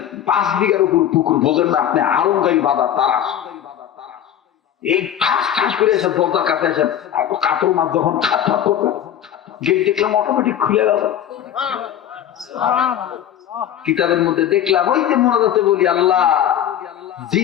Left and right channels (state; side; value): quieter; right; 10.4 dB